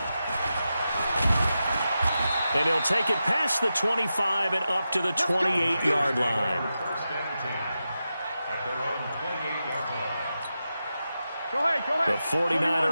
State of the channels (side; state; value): both; inverted; correlation -0.90